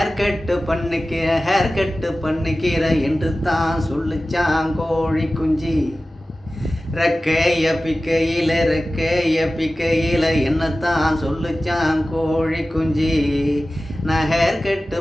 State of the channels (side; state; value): both; normal; correlation 0.96